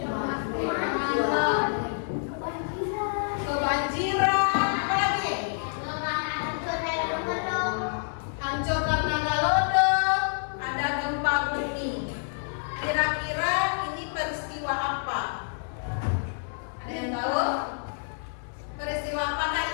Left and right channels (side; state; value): right; silent; 59 dB below the other